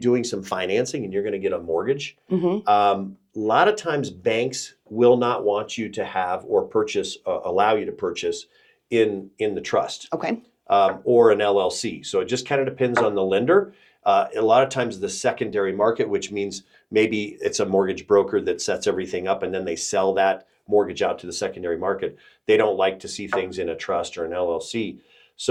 some financing and you're going to get a mortgage, a lot of times banks will not want you to have or allow you to purchase in the trust. Okay. Or an LLC. So it just kind of depends on the lender. A lot of times the secondary market, which means maybe it's a mortgage broker that sets everything up and then they sell that mortgage out to the secondary market. They don't like to see things in a trust or an LLC.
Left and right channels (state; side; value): identical; both; correlation 1.00